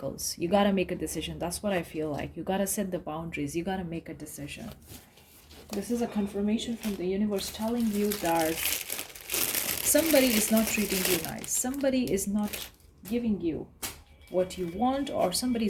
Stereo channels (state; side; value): identical; both; correlation 1.00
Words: you got to make a decision. That's what I feel like. You got to set the boundaries, you got to make a decision. This is a confirmation from the universe telling you that somebody is not treating you nice, somebody is not giving you what you want, or somebody